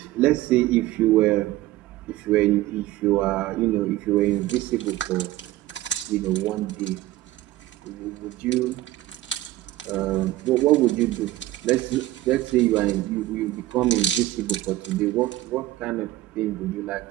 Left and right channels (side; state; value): left; quieter; 15.9 dB